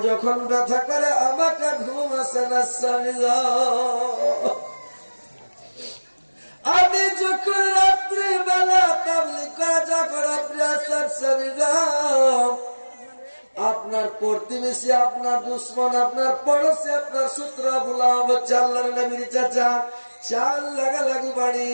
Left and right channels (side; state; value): both; inverted; correlation -1.00